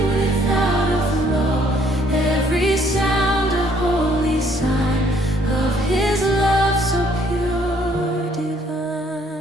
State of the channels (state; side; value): normal; both; correlation 0.64